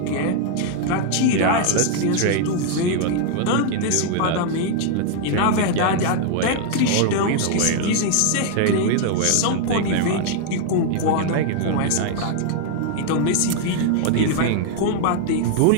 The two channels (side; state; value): both; different; correlation 0.00